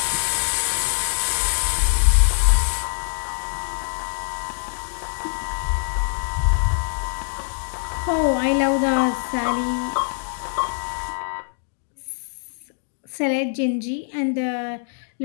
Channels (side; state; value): right; silent; 63 dB below the other